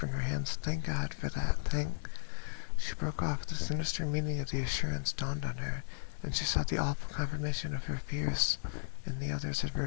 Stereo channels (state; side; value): silent; right; digital silence